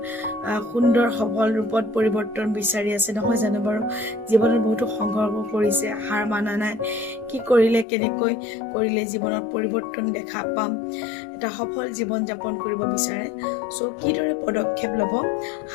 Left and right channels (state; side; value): drops out; right; at 7.9 s